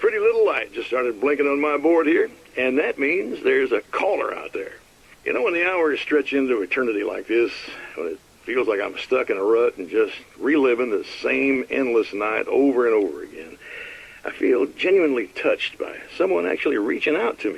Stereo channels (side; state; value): both; identical; correlation 1.00